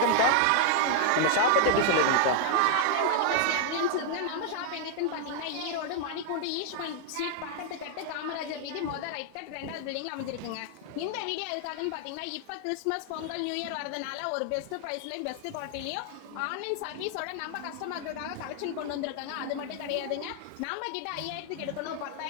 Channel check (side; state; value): both; different; correlation 0.00